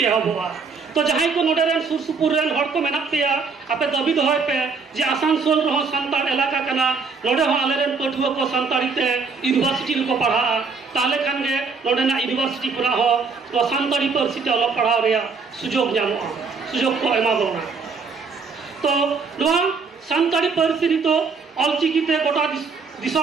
एहबवा तो जहां को नोडरेन सुरसुपुर रेन हड़ को मेना पेया आपे दबी दहय पे जे आसानसोल रहो सानताड़ इलाका कना नोडे हो आलेरेन पठुआ को सानताड़ी ते यूनिवर्सिटी को पढ़ा ताले खान गे नोडेना यूनिवर्सिटी पुरा हो तो सानताड़ी पार्सी ते अलग पढ़ाव रे सुजोग जामो सुजोग को एमा बोना तो नवा सानताड़ी पार्सी री तो ऑलचिकी ते गोटा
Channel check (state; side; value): quieter; left; 4.9 dB